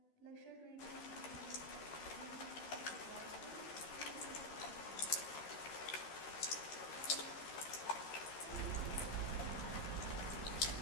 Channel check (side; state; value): right; late; 13 ms